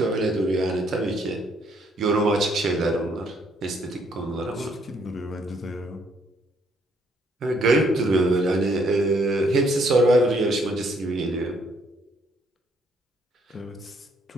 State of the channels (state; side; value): normal; both; correlation 0.69